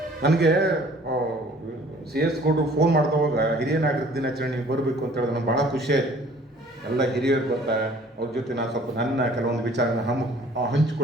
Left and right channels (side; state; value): both; normal; correlation 0.54